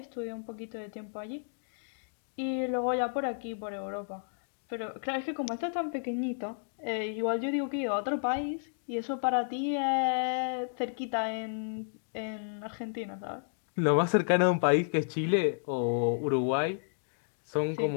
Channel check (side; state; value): right; silent; digital silence